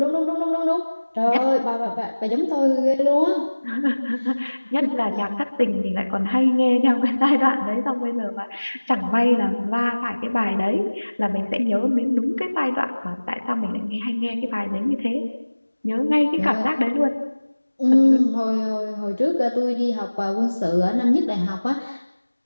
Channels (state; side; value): inverted; both; correlation -1.00